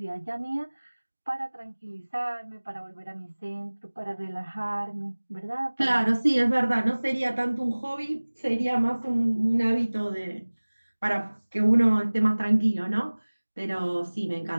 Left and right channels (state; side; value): inverted; both; correlation -1.00